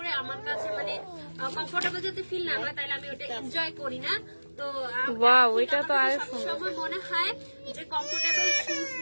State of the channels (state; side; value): inverted; both; correlation -1.00